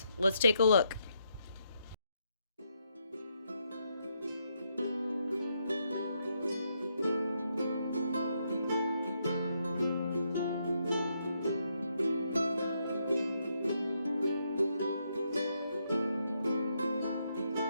Let's take a look.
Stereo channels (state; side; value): inverted; both; correlation -0.78